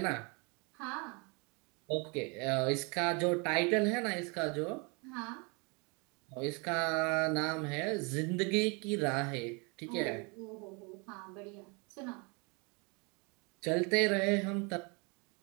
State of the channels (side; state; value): left; quieter; 31.4 dB